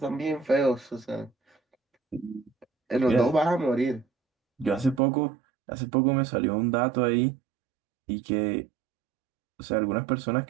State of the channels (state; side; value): drops out; left; at 5.0 s